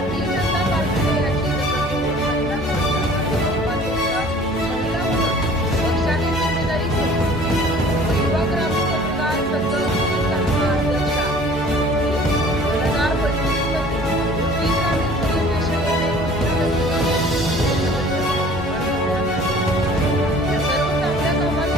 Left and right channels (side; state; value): both; normal; correlation 0.49